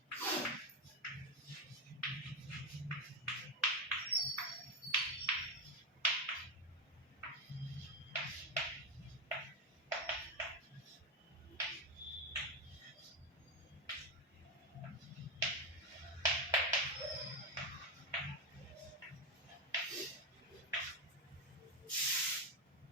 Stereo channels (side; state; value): both; normal; correlation 0.10